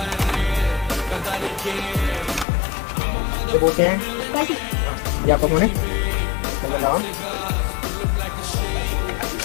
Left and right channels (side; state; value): right; drops out; at 2.5 s